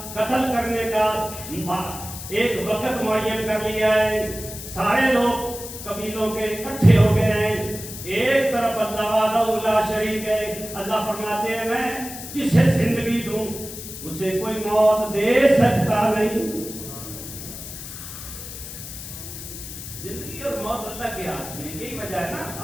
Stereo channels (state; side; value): noise; left; hiss, 11 dB below the sound